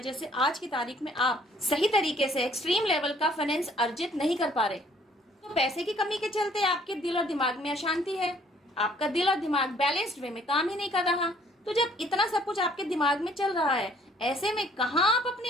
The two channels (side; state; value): both; normal; correlation 0.60